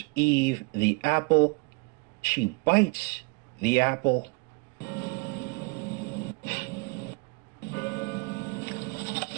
Eve the apple. She bites the apple.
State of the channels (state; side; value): quieter; left; 29.3 dB